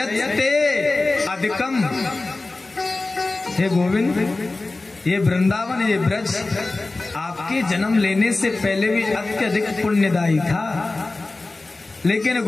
अधिकम, हे गोविंद, ये वृंदावन, ये ब्रज आपके जन्म लेने से पहले भी अत्यधिक पुण्यदायी था, लेकिन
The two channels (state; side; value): quieter; right; 3.2 dB